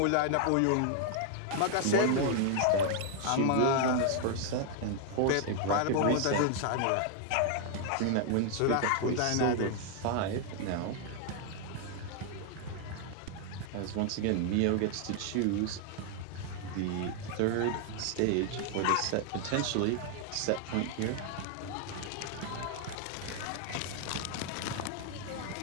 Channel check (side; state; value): both; different; correlation 0.00